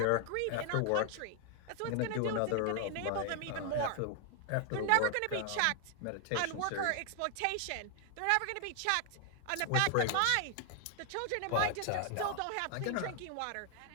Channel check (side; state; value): both; different; correlation 0.00